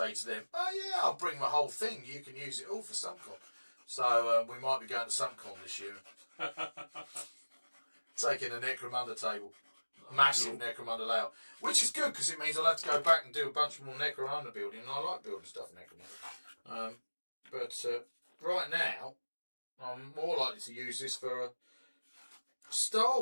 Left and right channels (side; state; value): both; inverted; correlation -1.00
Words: to them, oh yeah, I'll bring my whole thing, you can use it all for SumpCon. So we might be going to SumpCon this year. Taking a Necromunda table. Massive Necromunda layout. Which is good, because it means I'll have to go back and do a bunch more Necromunda building, and I like building stuff in Necromunda. But right now, I'm more likely to use this for a Star